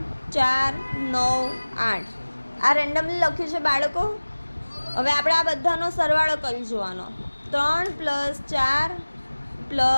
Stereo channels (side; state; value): both; inverted; correlation -1.00